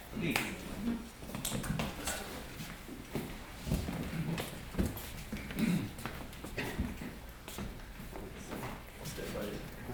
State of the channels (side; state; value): both; identical; correlation 1.00